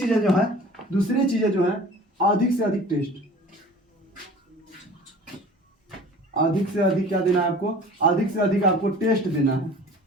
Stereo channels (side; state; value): both; normal; correlation 0.44